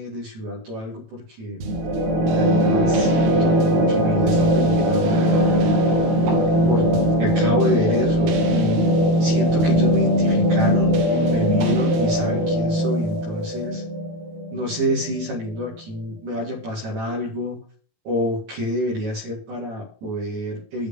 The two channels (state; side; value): late; left; 19 ms